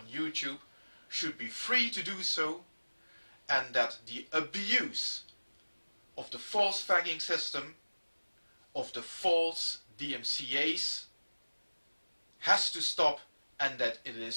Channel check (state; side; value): inverted; both; correlation -1.00